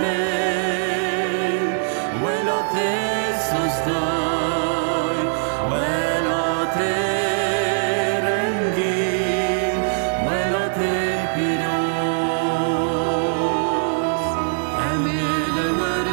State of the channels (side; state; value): left; silent; digital silence